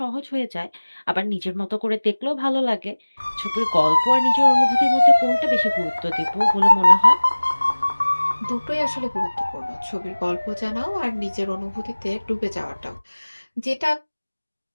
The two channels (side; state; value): both; inverted; correlation -1.00